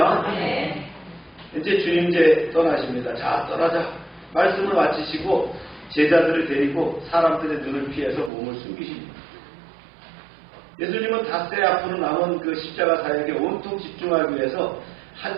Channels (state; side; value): drops out; left; at 8.3 s